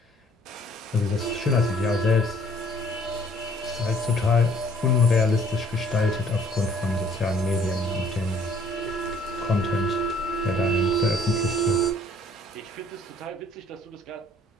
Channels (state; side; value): normal; both; correlation 0.58